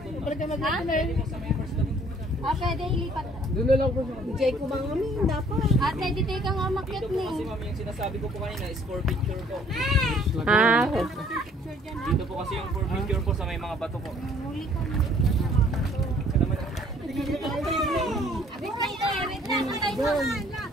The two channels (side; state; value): both; normal; correlation 0.58